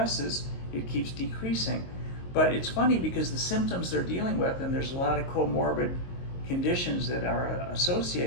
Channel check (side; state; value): right; late; 22 ms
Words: it keeps decreasing. But it's funny because the symptoms they're dealing with, and there's a lot of comorbid conditions that are